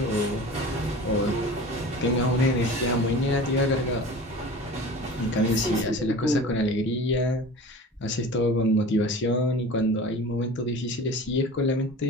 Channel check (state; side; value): normal; both; correlation 0.37